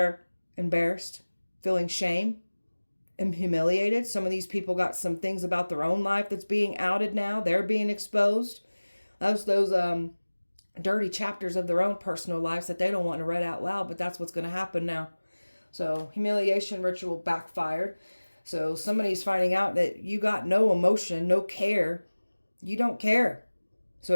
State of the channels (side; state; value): both; inverted; correlation -1.00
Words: embarrassed, feeling shame and humiliated. Some of these people got some things about their own life that's being outed now. They're being exposed. Those dirty chapters of their own personal lives that they don't want to read out loud, but that's what's going to happen now. So humiliation ritual backfired. So somebody's finding out that you got no emotion, no care. You don't care.